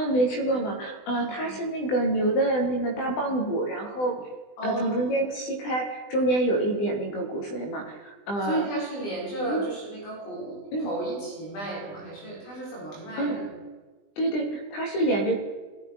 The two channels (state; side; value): late; right; 20 ms